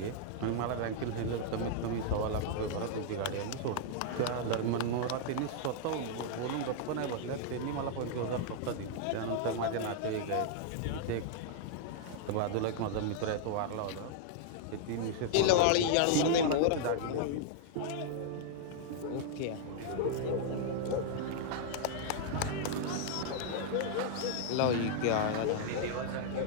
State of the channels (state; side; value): different; both; correlation -0.01